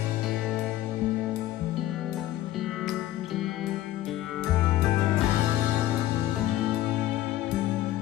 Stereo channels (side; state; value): right; quieter; 14.3 dB